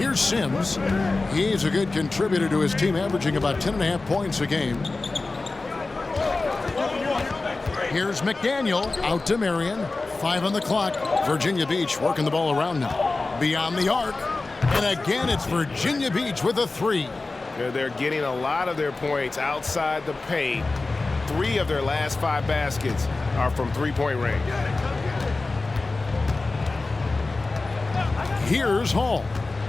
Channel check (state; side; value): quieter; right; 3.5 dB